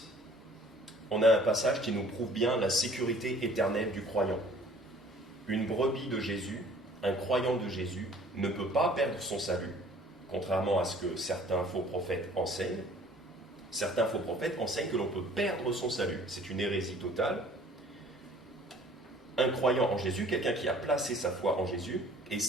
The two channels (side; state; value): both; normal; correlation 0.53